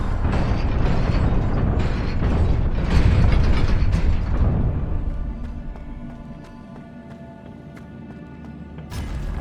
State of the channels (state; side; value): identical; both; correlation 1.00